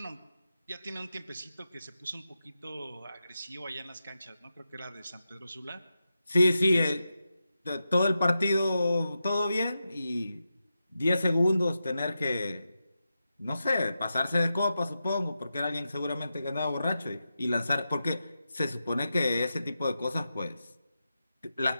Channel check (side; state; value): both; inverted; correlation -0.90